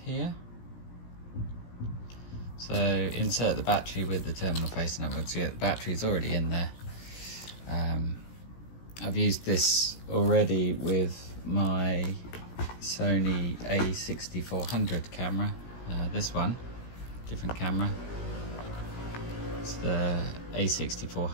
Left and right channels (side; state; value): right; late; 17 ms